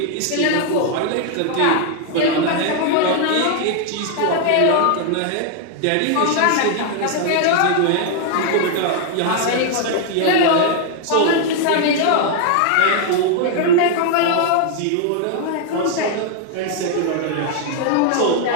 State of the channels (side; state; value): both; different; correlation 0.00